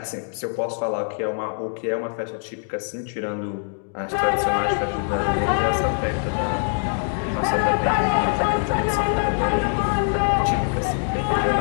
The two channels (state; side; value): silent; right; 63 dB below the other